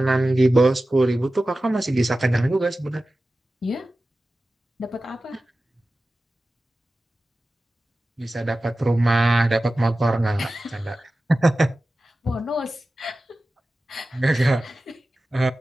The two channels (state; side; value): normal; both; correlation 0.95